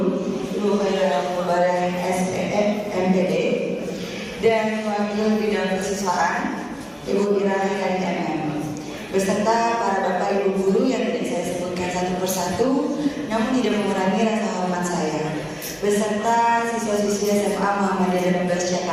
Ibu Khairul Mubarak SPM MPD dan Wakil Bidang Kesiswaan Ibu Ira KMM, beserta para bapak ibu guru yang tidak saya sebutkan satu persatu, namun tidak mengurangi rasa hormat saya, beserta siswa-siswi SMA Muhammadiyah 12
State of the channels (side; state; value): both; identical; correlation 1.00